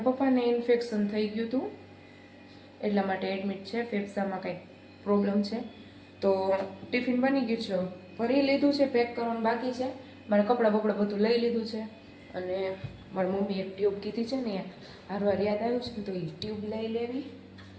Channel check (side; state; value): both; identical; correlation 1.00